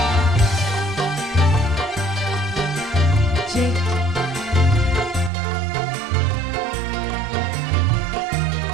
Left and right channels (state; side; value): drops out; left; at 5.3 s